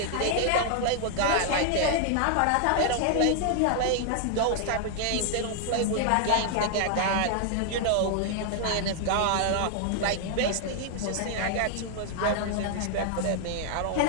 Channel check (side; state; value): both; different; correlation 0.00